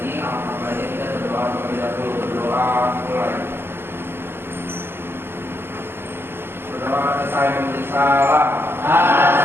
alangkah baiknya kita berdoa terlebih dahulu. Berdoa mulai. Berdoa selesai memberi salam.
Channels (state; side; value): late; left; 0.11 ms